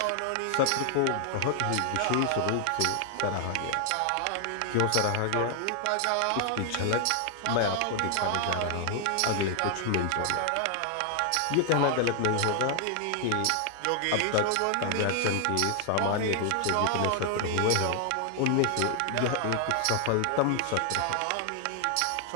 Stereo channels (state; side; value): different; both; correlation 0.00